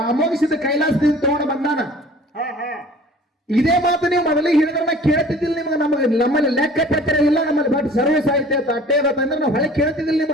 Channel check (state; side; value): normal; both; correlation 0.47